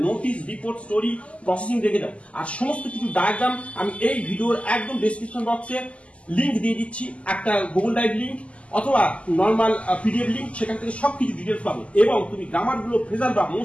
নোটিস, রিপোর্ট, স্টোরি, প্রসেসিং দেখে দাও। আর সমস্ত কিছু ডায়াগ্রাম আমি এই ভিডিওর একদম ডেসক্রিপশন বক্সে লিংক দিয়ে দিচ্ছি, একটা গুগল ড্রাইভ লিংক অথবা নর্মাল পিডিএফ লিংক, সেখান থেকে সবকিছু ডিটেলস পাবে। এবং তুমি গ্রামার গুলো ফ্রেজাল বা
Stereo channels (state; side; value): late; right; 0.061 ms